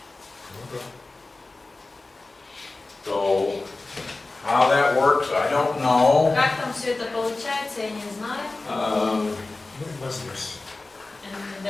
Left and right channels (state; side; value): quieter; right; 3.3 dB